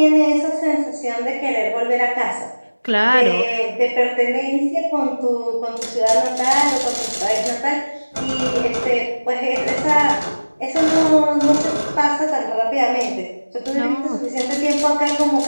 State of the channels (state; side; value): inverted; both; correlation -1.00